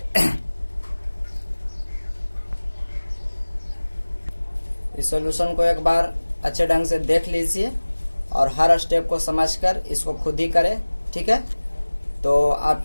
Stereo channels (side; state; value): both; inverted; correlation -1.00